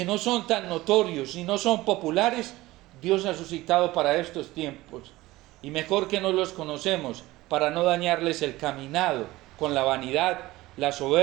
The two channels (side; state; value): left; quieter; 18.4 dB